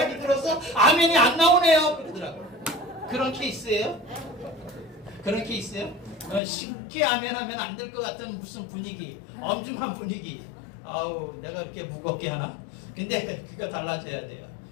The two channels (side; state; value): right; drops out; at 6.4 s